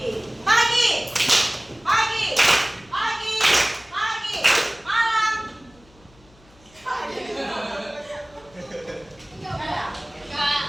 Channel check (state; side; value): noise; left; hum, 28 dB below the sound